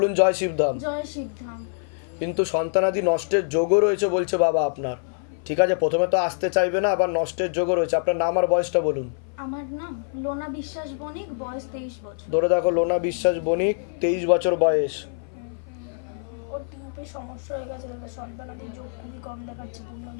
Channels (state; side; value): silent; right; 57 dB below the other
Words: জয় শিবধাম। জয় শিবধাম। কিন্তু সন্তানাদি নষ্টের যোগও রয়েছে বলছে বাবা আপনার। ঠিক আছে, প্রথমে তো আসতে চাইবে না, আবার নষ্টের যোগও রয়েছে। আপনার নাম আর বয়সটা বলুন। আমার নাম লোনা বিশ্বাস বণিক, বয়স 23 বছর। ধরে দেখো, লোনা বিশ্বাস বণিক, 23 বছর বয়স। ওর টিউবে সমস্যা হয়ে গেছে, সন্তানাদি যোগ খুবই কম দেখাচ্ছে, পূর্ণ